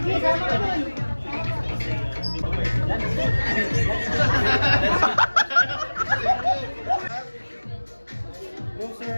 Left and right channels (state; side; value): inverted; both; correlation -1.00